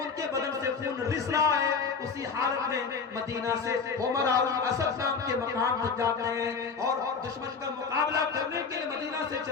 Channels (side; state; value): right; quieter; 5.3 dB